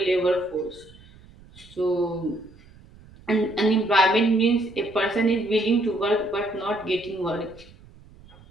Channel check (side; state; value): right; noise; rumble, 23 dB below the sound